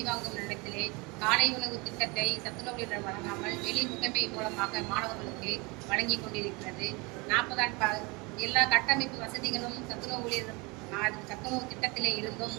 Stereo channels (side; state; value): left; quieter; 27.2 dB